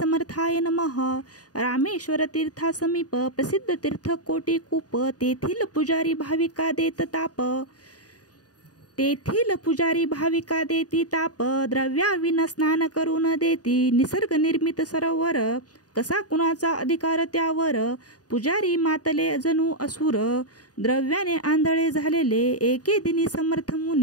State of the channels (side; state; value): right; late; 0.68 ms